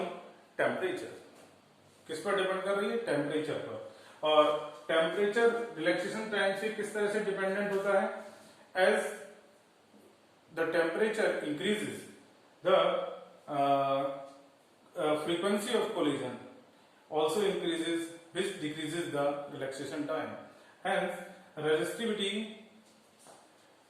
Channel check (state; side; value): identical; both; correlation 1.00